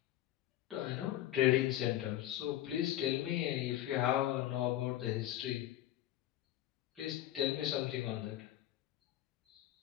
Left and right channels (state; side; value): quieter; right; 13.7 dB